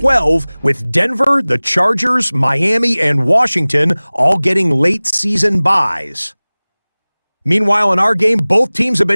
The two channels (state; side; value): inverted; both; correlation -1.00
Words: with Denver, the Chargers, Miami, and Washington all getting late season byes. Meanwhile, in our game, both teams have